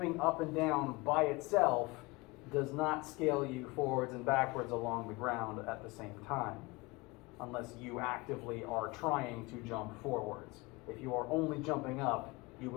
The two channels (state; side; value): quieter; right; 24.3 dB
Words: up and down by itself does not scale you forwards and backwards along the ground at the same time, unless you actively are trying to jump forwards. If you are only jumping up, you